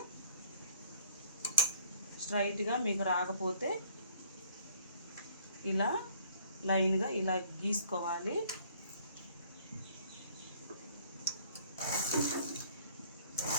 స్ట్రైట్గా మీకు రాకపోతే ఇలా లైన్గా ఇలా గీసుకోవాలి.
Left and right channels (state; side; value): inverted; both; correlation -0.59